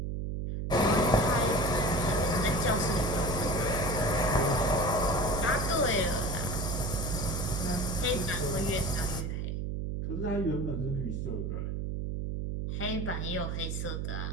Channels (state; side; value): noise; right; hum, 2 dB below the sound